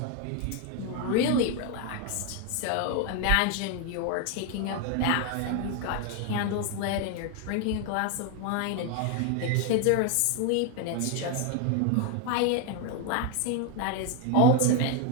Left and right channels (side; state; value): both; different; correlation 0.01